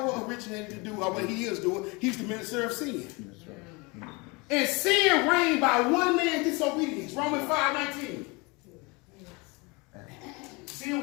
originated to do, or what he is doing. He's the minister of sin. And sin reigned by one man's disobedience. Romans 5:19. Sin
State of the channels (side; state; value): right; quieter; 27.2 dB